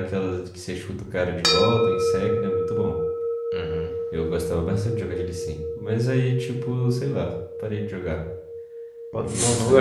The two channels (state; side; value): identical; both; correlation 1.00